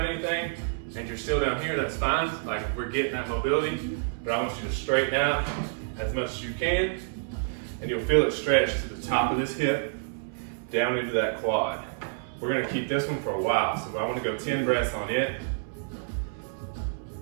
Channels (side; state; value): left; silent; 59 dB below the other